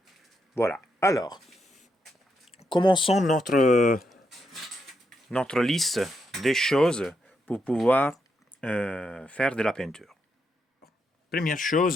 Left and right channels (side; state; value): both; normal; correlation 0.81